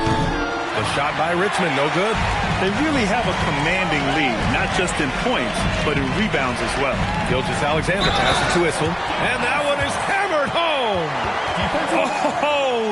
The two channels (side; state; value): both; identical; correlation 1.00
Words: shot by Richmond, no good. They really have a commanding lead, not just in points, but in rebounds as well. Gilgeous-Alexander passes to Issel, and that one is hammered home.